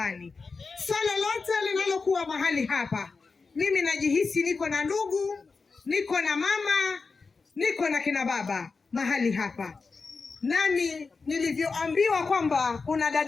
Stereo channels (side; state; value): right; quieter; 4.5 dB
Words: Swala lote linalokuwa mahali hapa, mimi najihisi niko na ndugu, niko na mama, niko na kina baba mahali hapa. Nami nilivyoambiwa kwamba kuna